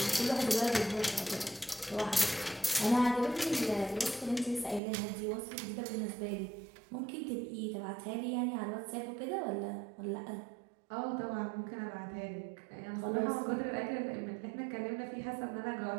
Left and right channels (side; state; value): left; drops out; at 4.8 s